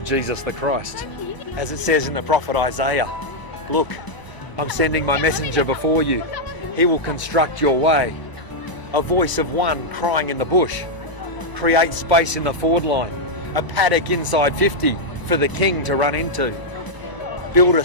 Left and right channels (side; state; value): right; late; 1.0 ms